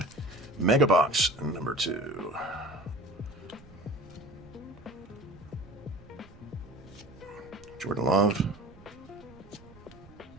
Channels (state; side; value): noise; right; rumble, 21 dB below the sound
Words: Mega box number 2. Jordan Love.